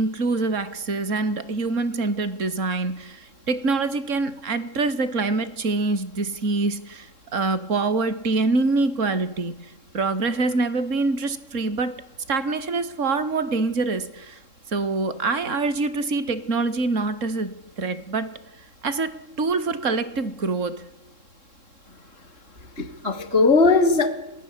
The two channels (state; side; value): late; left; 3.7 ms